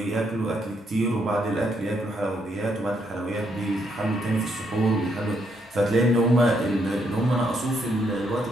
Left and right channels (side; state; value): both; normal; correlation 0.75